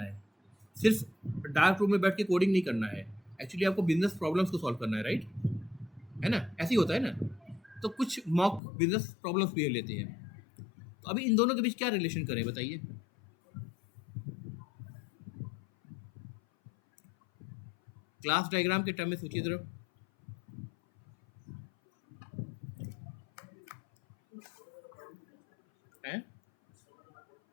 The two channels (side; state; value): right; drops out; at 8.6 s